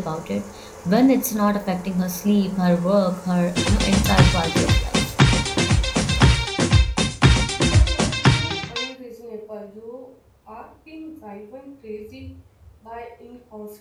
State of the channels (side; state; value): both; identical; correlation 1.00